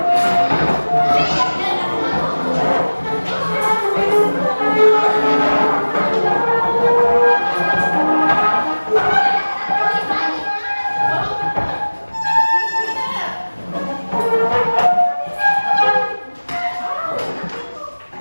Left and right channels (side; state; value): both; inverted; correlation -1.00